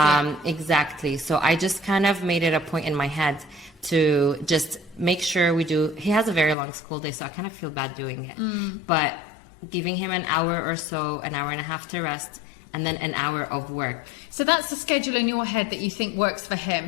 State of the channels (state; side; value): drops out; right; at 6.6 s